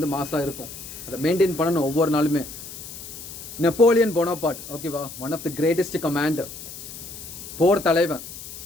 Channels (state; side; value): noise; left; hiss, 12 dB below the sound